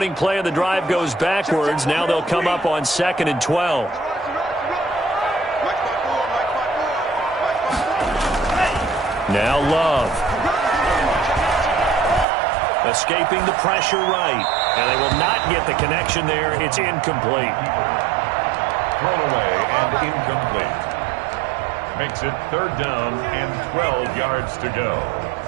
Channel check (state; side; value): drops out; left; at 12.2 s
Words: play of the drive goes backwards. Now they'll come up on 2nd and 12. Now Love. Escaping the pressure right. And they will not get the connection there. It's incomplete. Thrown away and incomplete. Makes it 3rd down and 12 yards to go.